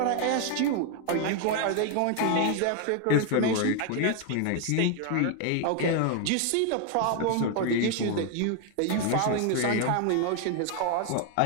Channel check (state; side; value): different; both; correlation 0.00